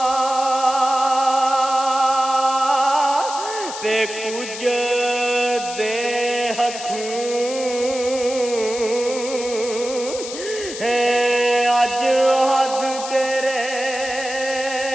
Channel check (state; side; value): noise; left; hiss, 10 dB below the sound